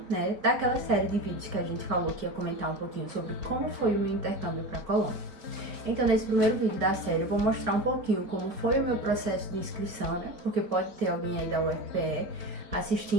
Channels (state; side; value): late; left; 4.2 ms